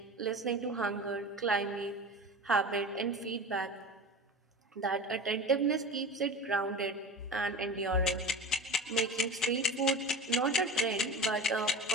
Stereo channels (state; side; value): normal; both; correlation 0.32